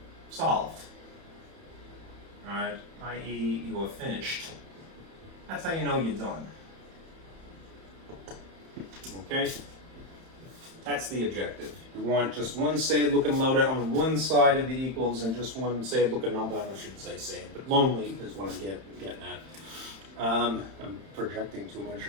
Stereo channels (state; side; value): late; left; 31 ms